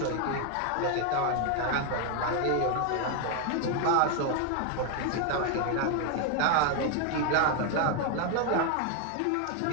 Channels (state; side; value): different; both; correlation 0.01